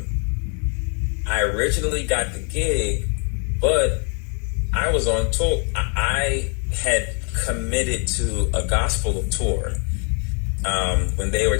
I originally got the gig, but I was on tour. I had committed to a gospel tour when they were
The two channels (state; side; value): quieter; right; 39.1 dB